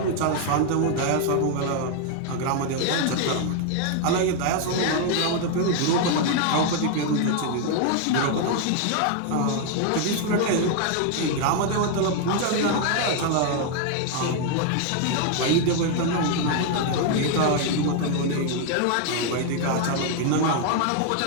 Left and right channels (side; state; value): both; different; correlation 0.00